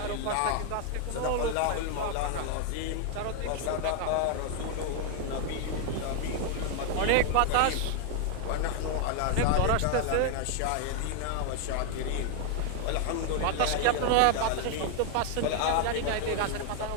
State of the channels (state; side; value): different; both; correlation 0.00